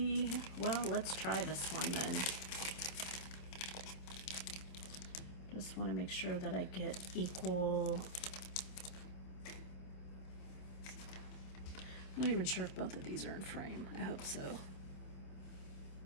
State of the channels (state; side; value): late; right; 27 ms